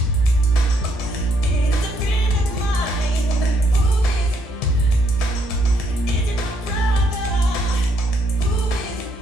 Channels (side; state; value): both; normal; correlation 0.72